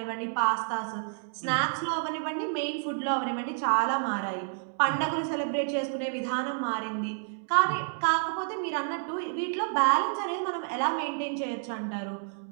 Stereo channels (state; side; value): silent; left; digital silence